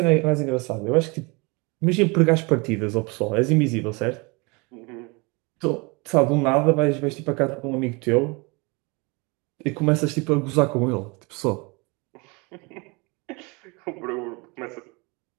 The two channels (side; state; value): left; quieter; 28.2 dB